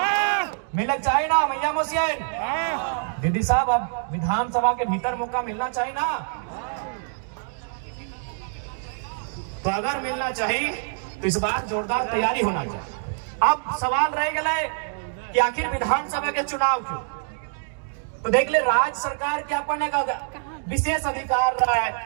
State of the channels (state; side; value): silent; left; digital silence